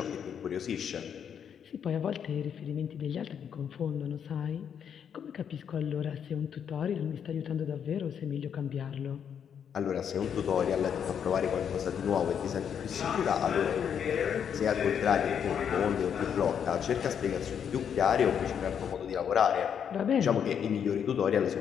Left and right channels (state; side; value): quieter; right; 8.0 dB